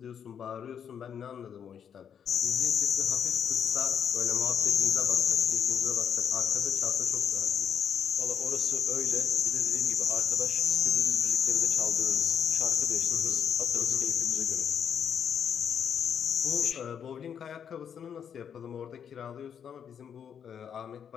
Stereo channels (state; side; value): quieter; right; 8.1 dB